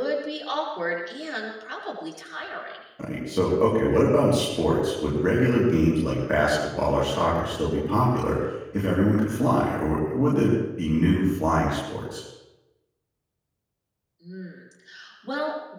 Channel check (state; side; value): identical; both; correlation 1.00